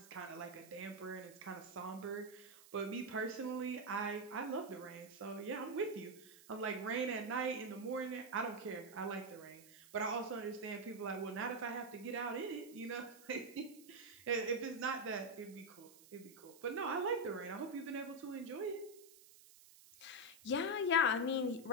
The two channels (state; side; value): noise; right; hiss, 21 dB below the sound